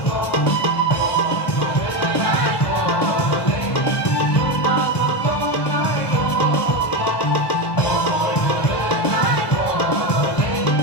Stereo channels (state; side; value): late; right; 1.1 ms